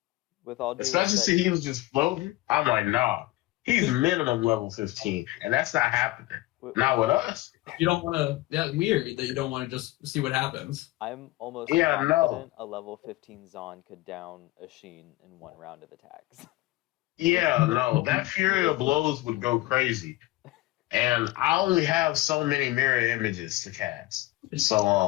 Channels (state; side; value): quieter; right; 18.7 dB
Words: With all due Especially respect, since he was just floating. I'm like, nah, he's minimum level 15, and that's not happening. with- Not with us. You don't want to. That's weird that you don't want to just see what happens. I'm almost Yeah, no. confident a level 15 Zon could down a Sheen in one round of attacks. Yeah, no, that Fury of Blows would go crazy. And I only have so many mirror images to cast.